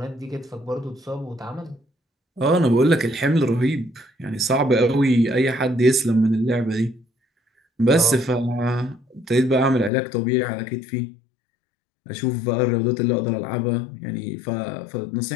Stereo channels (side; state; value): right; drops out; at 9.9 s